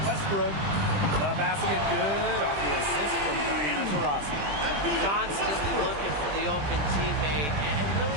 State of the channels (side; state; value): left; late; 20 ms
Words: Westbrook. The basket good off the assist from Diana Taurasi. Constantly looking for the open teammate. And